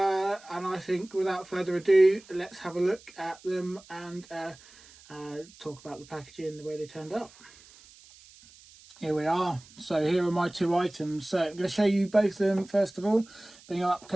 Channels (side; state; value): right; noise; hiss, 24 dB below the sound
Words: I think without further ado, let's have a look at them and talk about the packaging, the way they turned up. Here we are. So here are my 2 items. So I'm going to show you both of them first of all, bring up